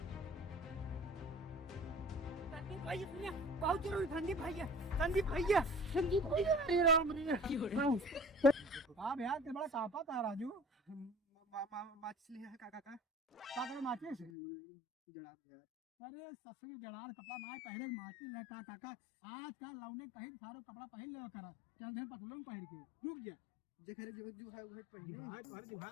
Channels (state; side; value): drops out; right; at 14.3 s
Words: सुनिए, बहुत जरूरी संदीप भैया अरे राम रे हाँ भैया ते बड़ा कापा था राजू। माचिस लिया है काका का का माचिस जड़ा यार। अरे ससुर जड़ार कपड़ा ना पहने के माचिस ले का काका आज का लौने कहीं सारो कपड़ा पहन ले करा चल दे पतलून पहन के रुक जा जेखरे जो जुहा उहे पहने हां तोहर